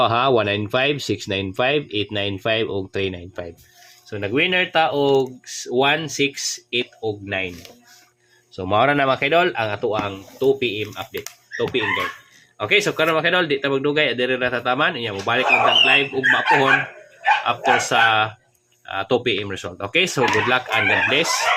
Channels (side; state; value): both; identical; correlation 1.00